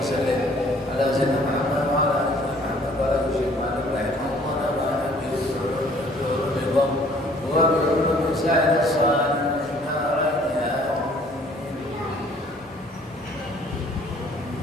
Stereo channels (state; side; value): normal; both; correlation 0.57